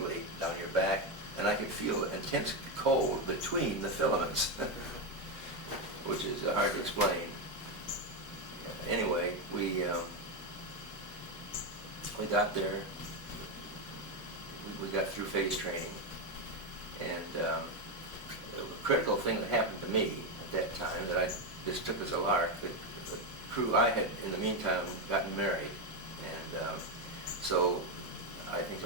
down your back, and I could feel intense cold between the filaments, which is hard to explain. Anyway, we got there, we got through phase training, and the critical thing that happened to me at that time that I just took as a lark, the crew, I had in the meantime gotten married, and so I think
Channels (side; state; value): both; normal; correlation 0.08